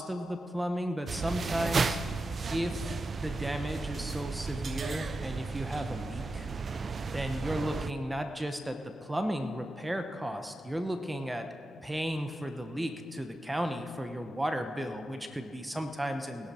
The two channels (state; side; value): normal; both; correlation 0.91